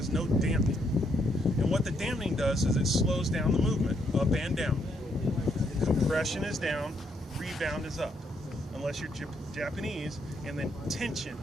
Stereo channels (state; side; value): normal; both; correlation 0.74